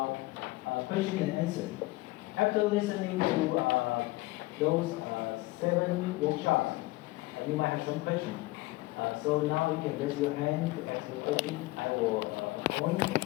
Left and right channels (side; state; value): right; quieter; 20.6 dB